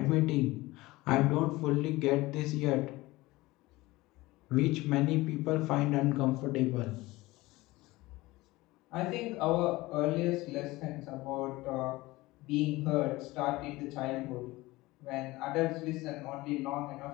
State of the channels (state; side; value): quieter; right; 20.0 dB